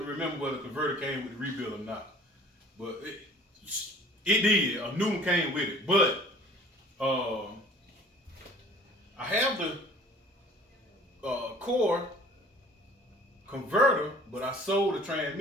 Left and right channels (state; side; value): normal; both; correlation 0.49